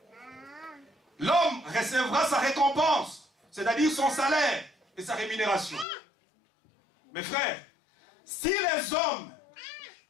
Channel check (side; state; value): right; drops out; at 5.9 s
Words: l'homme recevra sa récompense, c'est-à-dire son salaire et sa rémunération. Mes frères, si les hommes,